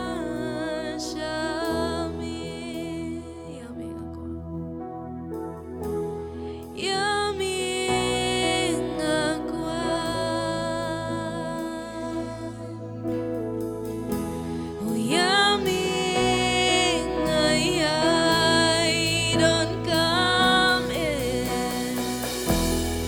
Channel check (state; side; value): identical; both; correlation 1.00